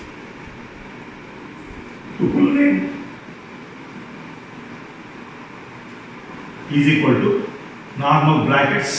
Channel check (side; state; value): both; identical; correlation 1.00